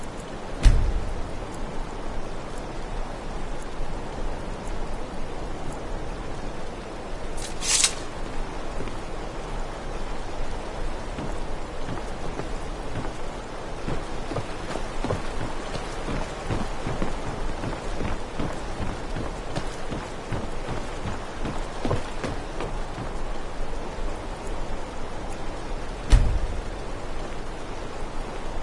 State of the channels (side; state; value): both; identical; correlation 1.00